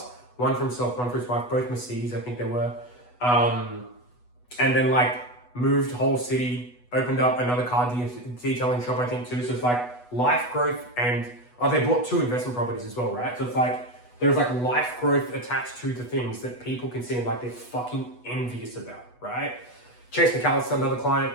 One for himself, one for his wife, both Mercedes, I think they were. And then like moved whole city, opened up another car detailing shop, I think too. So it's like life growth and they bought 2 investment properties as well, right? So it's like, there's like life growth attached to the things that people can see like they're fucking envious about, right? Chase McAllister, another client,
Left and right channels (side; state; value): right; late; 8.1 ms